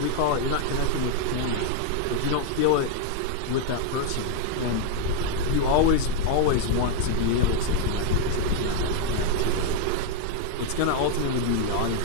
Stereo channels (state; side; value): different; both; correlation 0.00